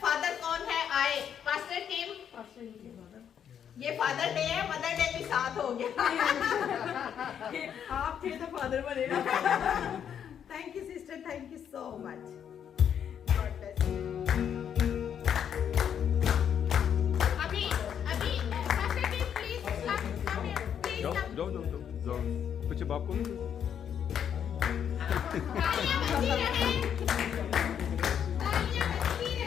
फादर कौन है आए? Pastor team. ये फादर डे है, मदर डे भी साथ हो गया। आप थे तो फादर बनेगा। Thank you sister, thank you so much. God bless you. अभी pastor team please come here please come. जाओ कुछ बाप को तालियां बजती रहे, तालियां बजती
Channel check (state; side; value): quieter; right; 8.6 dB